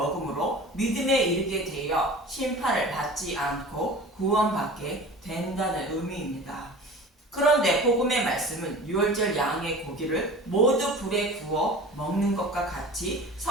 믿음에 이르게 되어 심판을 받지 않고 구원받게 된다는 의미입니다. 그런데 복음의 말씀은 유월절 양의 고기를 모두 불에 구워 먹는 것과 같이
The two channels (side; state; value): both; normal; correlation 0.39